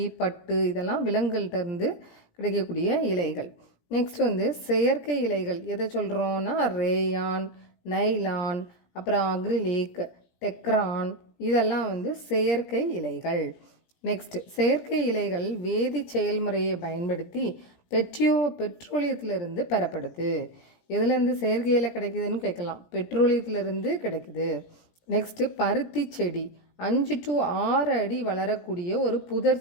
பட்டு இதெல்லாம் விலங்குகள்கிட்ட இருந்து கிடைக்கக்கூடிய இலைகள். நெக்ஸ்ட் வந்து செயற்கை இலைகள் எதை சொல்கிறோன்னா ரேயான், நைலான், அப்புறம் அக்ரிலிக், டெக்ரான், இதெல்லாம் வந்து செயற்கை இலைகள். நெக்ஸ்ட் செயற்கை இலைகள் வேதி செயல்முறையை பயன்படுத்தி பெட்ரோலியத்திலிருந்து பெறப்படுது. எதுலேருந்து செயற்கை இலை கிடைக்குதுன்னு கேட்கலாம். பெட்ரோலியத்திலிருந்து கிடைக்குது. நெக்ஸ்ட்டு பருத்தி செடி 5 to 6 அடி வளரக்கூடிய ஒரு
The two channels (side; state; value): right; late; 17 ms